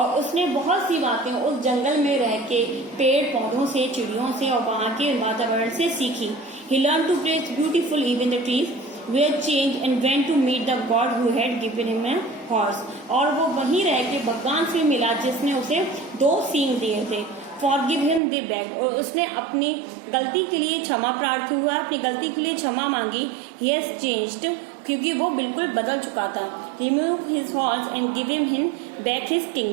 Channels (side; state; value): left; drops out; at 18.2 s